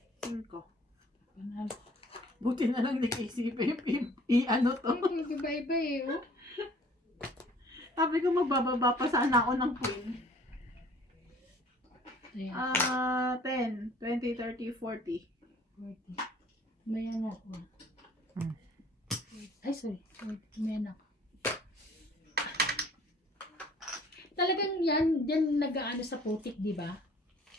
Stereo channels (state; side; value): normal; both; correlation 0.54